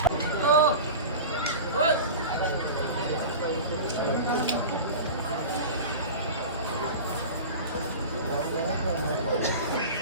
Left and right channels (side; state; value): both; inverted; correlation -0.31